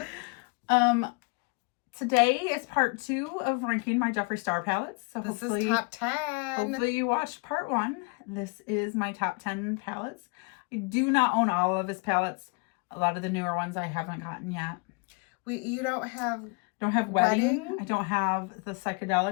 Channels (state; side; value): quieter; right; 31.7 dB